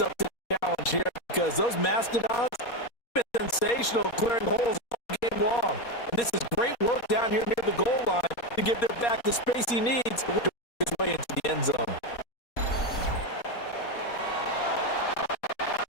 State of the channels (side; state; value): right; late; 4.2 ms